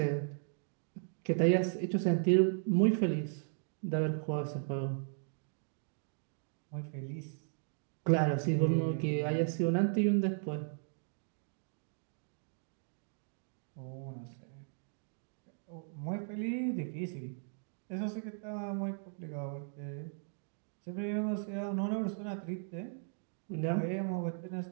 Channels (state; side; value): silent; left; digital silence